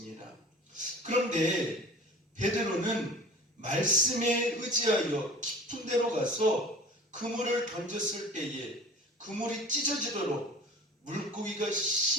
그런데 베드로는 말씀에 의지하여 깊은 데로 가서 그물을 던졌을 때에 그물이 찢어지도록 물고기가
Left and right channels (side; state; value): both; normal; correlation 0.42